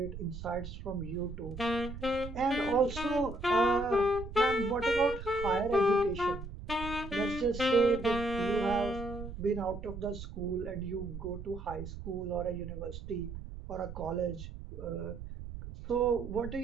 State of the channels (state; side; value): noise; right; rumble, 10 dB below the sound